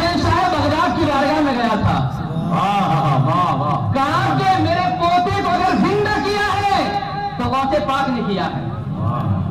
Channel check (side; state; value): both; identical; correlation 1.00